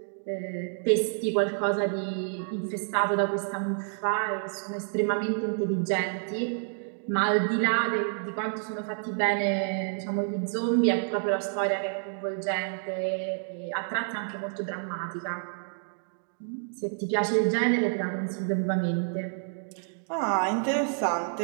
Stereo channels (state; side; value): silent; left; digital silence